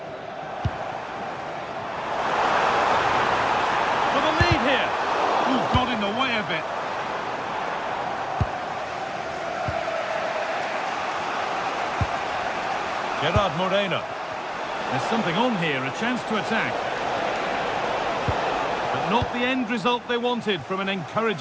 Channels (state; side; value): identical; both; correlation 1.00